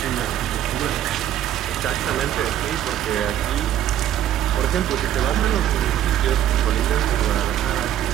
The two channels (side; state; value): left; quieter; 11.3 dB